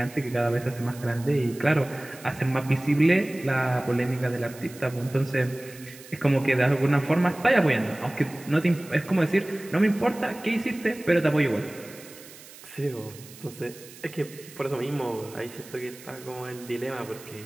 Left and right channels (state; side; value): noise; right; hiss, 19 dB below the sound